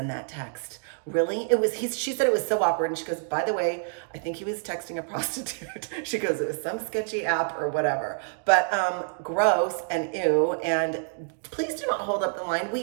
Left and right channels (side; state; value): left; silent; digital silence